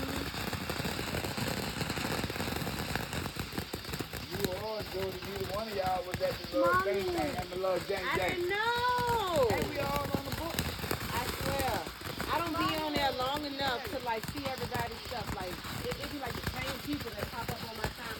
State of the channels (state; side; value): identical; both; correlation 1.00